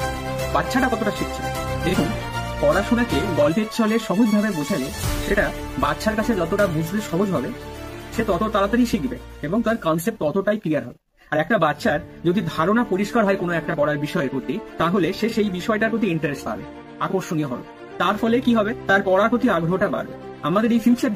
বাচ্চাটা কতটা শিখছে? দেখুন, পড়াশোনাকে গল্পের ছলে সহজভাবে বোঝালে সেটা বাচ্চার কাছে যতটা বুঝতে সহজ হবে, সে তত তাড়াতাড়ি শিখবে এবং তার কনসেপ্ট ততটাই ক্লিয়ার হবে। আর একটা বাচ্চার যদি ধারণা পরিষ্কার হয় কোনো একটা পড়ার বিষয়ের প্রতি, তাহলে সে সেই বিষয়টার প্রতি ইন্টারেস্ট পাবে, আকর্ষণীয় হবে। তার ফলে কি হবে? তার পড়ার প্রতি আগ্রহটা বাড়বে। আমাদের এই ফিউচার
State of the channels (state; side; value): identical; both; correlation 1.00